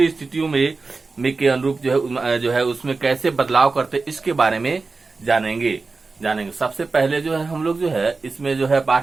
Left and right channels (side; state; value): left; quieter; 4.0 dB